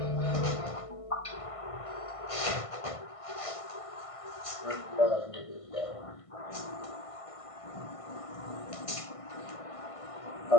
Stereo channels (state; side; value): late; right; 1.5 ms